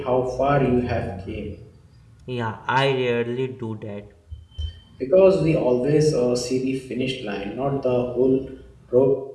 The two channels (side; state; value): both; identical; correlation 1.00